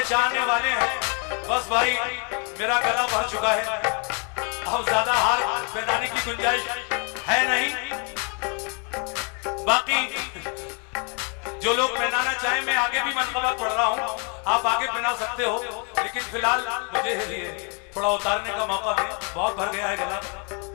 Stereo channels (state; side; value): quieter; right; 37.4 dB